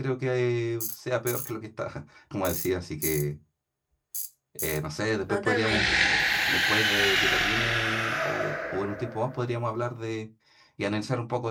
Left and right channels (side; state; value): both; identical; correlation 1.00